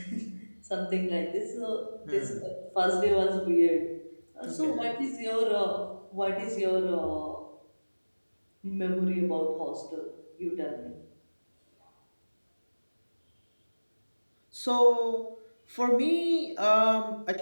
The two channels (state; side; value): inverted; both; correlation -1.00